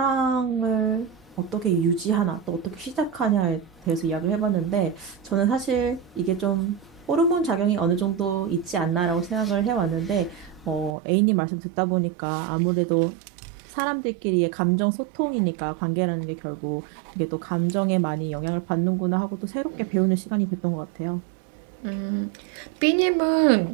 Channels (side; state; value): left; drops out; at 11.0 s